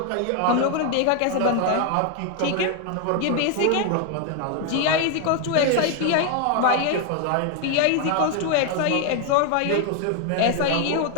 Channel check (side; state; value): both; different; correlation 0.01